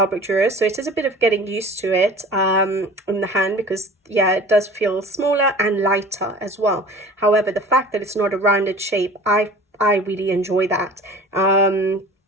Dürer, so it is a bit of getting used to it in the hand, because yeah, it does feel smaller and lighter as well. However, the fact that it's not a rounded shape, I I really enjoy that.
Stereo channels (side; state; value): both; normal; correlation 0.42